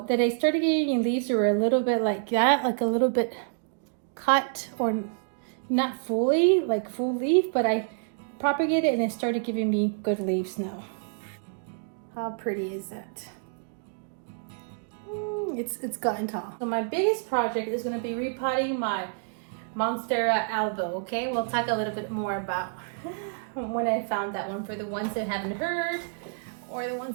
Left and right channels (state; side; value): silent; left; digital silence